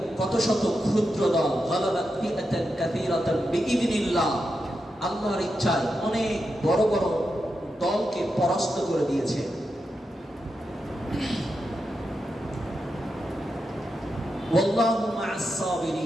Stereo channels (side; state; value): both; normal; correlation 0.87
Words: কত শত ক্ষুদ্র দল, গালাবাত ফিআতান কাসীরাতান বিইذনিল্লাহ, আল্লাহর ইচ্ছায় অনেক বড় বড় দলকে পরাস্ত করে দিয়েছে। ওয়াল্লাহু মা'আস